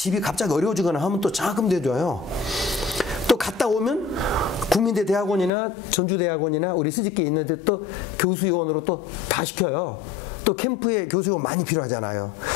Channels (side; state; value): right; drops out; at 5.5 s